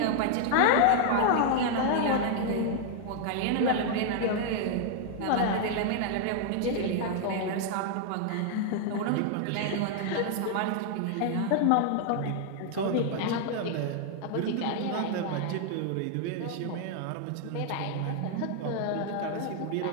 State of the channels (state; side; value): different; both; correlation 0.00